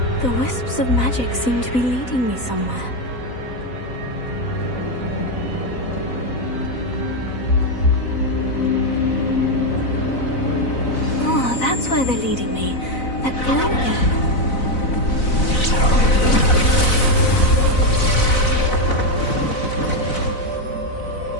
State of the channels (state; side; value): late; right; 4.0 ms